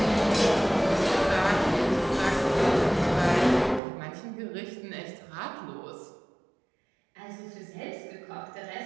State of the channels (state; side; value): drops out; left; at 3.8 s